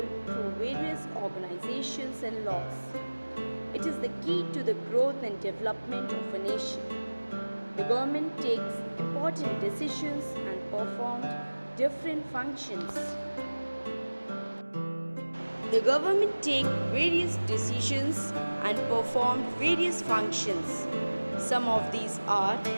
through various organizations and laws. It is the key to the growth and development of a nation. The government takes important decisions and performs different functions. The government takes various decisions and performs various functions. Some of these are:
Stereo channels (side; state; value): both; inverted; correlation -1.00